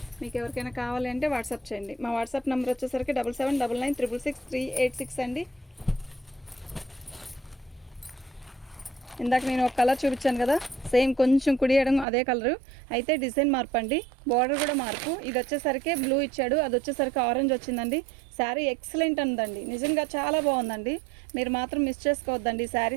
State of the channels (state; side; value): drops out; left; at 12.1 s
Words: మీకు ఎవరికైనా కావాలి అంటే వాట్సాప్ చేయండి. మా వాట్సాప్ నెంబర్ వచ్చేసరికి 7799666386 అండి. ఇందాక నేను ఒక కలర్ చూపించాను కదా, సేమ్ కొంచెం కుడియడం అదే కలరు, అయితే డిజైన్ మార్పు అండి. బార్డర్ కూడా మార్పు. ఇది వచ్చేసరికి బ్లూ ఇచ్చాడు, అది వచ్చేసరికి ఆరెంజ్ వచ్చిందండి. శారీ ఎక్సలెంట్ ఉందండి. నిజంగా చాలా బాగుందండి. మీరు మాత్రం మిస్ చేసుకోవద్దండి.